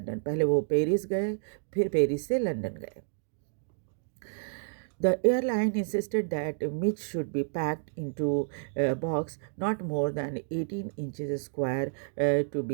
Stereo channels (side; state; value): left; silent; digital silence